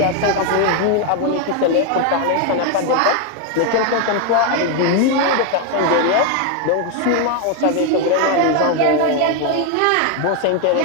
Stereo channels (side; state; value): both; different; correlation 0.01